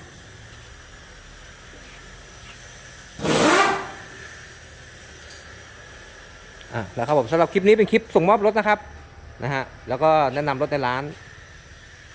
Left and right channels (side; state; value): both; identical; correlation 1.00